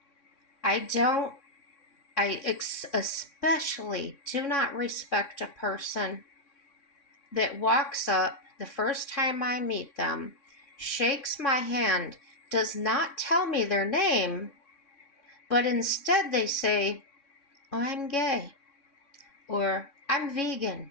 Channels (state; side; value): late; right; 3.6 ms